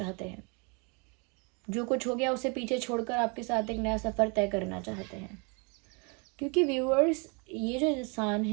हैं। जो कुछ हो गया उसे पीछे छोड़कर आपके साथ एक नया सफ़र तय करना चाहते हैं। क्योंकि व्यूअर्स, ये जो इंसान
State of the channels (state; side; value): quieter; left; 33.0 dB